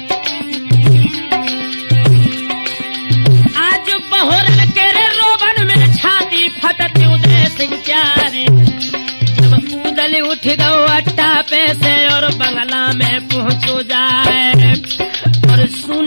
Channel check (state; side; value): inverted; both; correlation -1.00